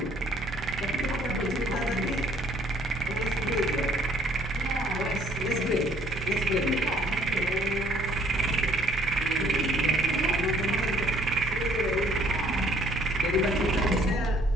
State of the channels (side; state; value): both; normal; correlation 0.62